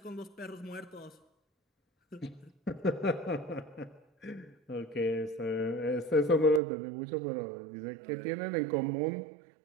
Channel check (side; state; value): left; drops out; at 6.6 s